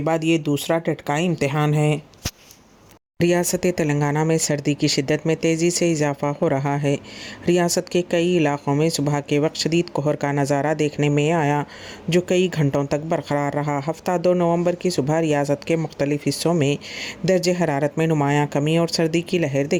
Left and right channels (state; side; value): identical; both; correlation 1.00